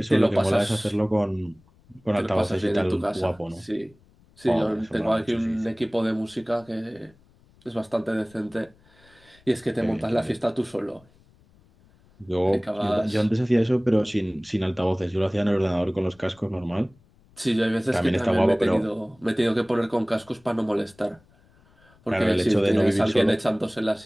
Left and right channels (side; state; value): left; noise; rumble, 30 dB below the sound